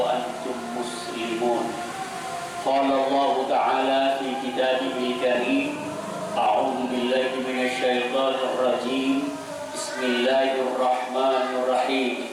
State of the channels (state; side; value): identical; both; correlation 1.00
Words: مسلمون. قال الله تعالى في كتابه الكريم: أعوذ بالله من الشيطان الرجيم. بسم الله الرحمن الرحيم.